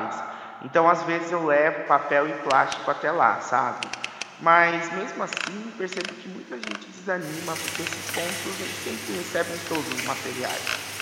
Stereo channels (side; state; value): both; identical; correlation 1.00